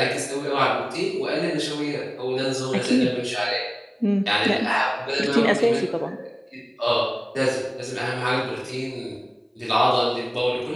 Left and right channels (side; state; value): both; identical; correlation 1.00